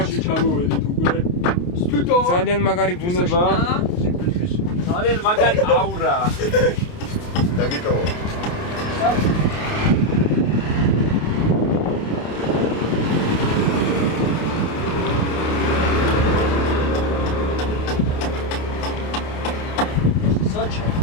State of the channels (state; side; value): late; right; 28 ms